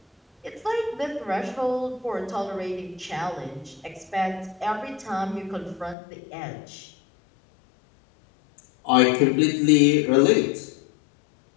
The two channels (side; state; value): right; drops out; at 6.0 s